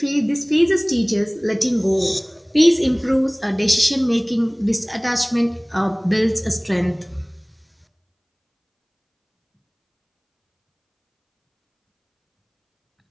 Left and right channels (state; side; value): identical; both; correlation 1.00